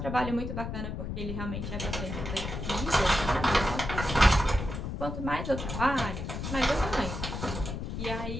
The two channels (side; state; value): left; noise; rumble, 5 dB below the sound